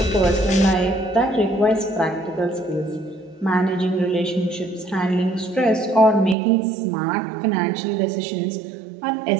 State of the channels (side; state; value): left; drops out; at 6.4 s